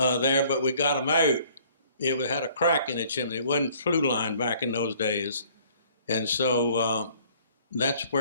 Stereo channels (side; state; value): both; inverted; correlation -0.57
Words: but we got them out. It had a crack in the chimney. It wasn't flue line back in those days, and so that's